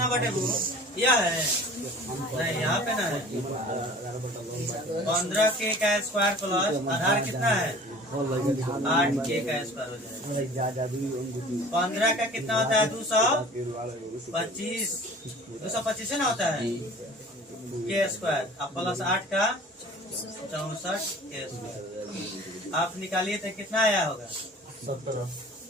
बटे वो, यह है नहीं, यहाँ पे ना है 15 के का स्क्वायर प्लस आधार कितना है 8 के का स्क्वायर हो जाएगा। 15 का कितना होता है 225, 225 ना होता है के स्क्वायर, अब प्लस 8 का 64 के स्क्वायर। आप निकालिए तो कितना आया होगा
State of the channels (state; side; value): normal; both; correlation 0.45